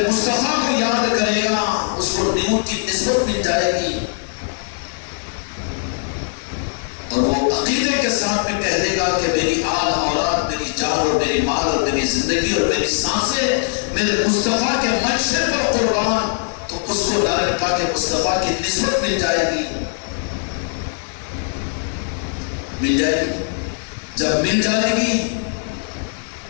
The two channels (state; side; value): silent; right; 66 dB below the other